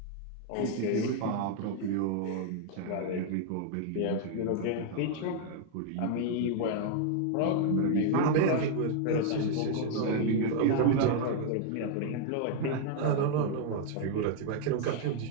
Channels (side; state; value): both; different; correlation 0.00